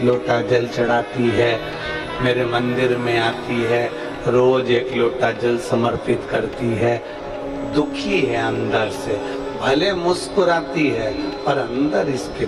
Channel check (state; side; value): identical; both; correlation 1.00